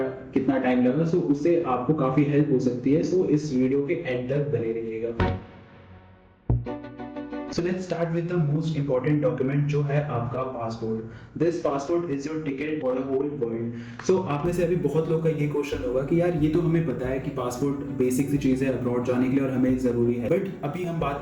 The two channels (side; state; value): both; identical; correlation 1.00